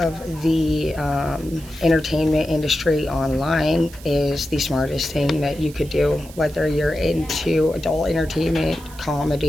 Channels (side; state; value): right; noise; hiss, 20 dB below the sound